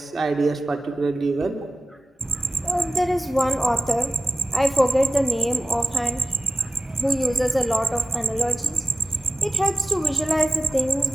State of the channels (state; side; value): normal; both; correlation 0.88